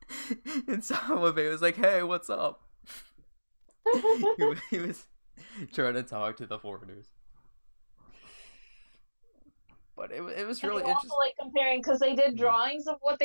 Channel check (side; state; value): both; inverted; correlation -1.00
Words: And Sawabe was like, "Hey, what's up?" he was trying to talk to the foreigners. But it was really interesting. Also, like, comparing, because they did drawings of what